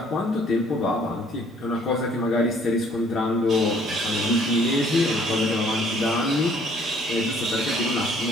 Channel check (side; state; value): both; normal; correlation 0.60